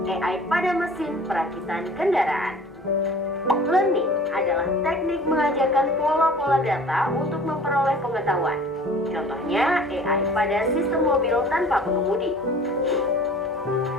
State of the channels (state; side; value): normal; both; correlation 0.46